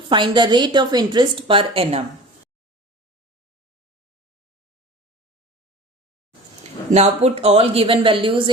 Find the rate of interest per annum. Now put all given values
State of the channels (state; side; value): normal; both; correlation 0.40